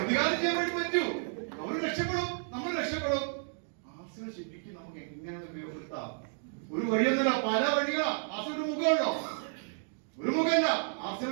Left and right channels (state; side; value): silent; left; digital silence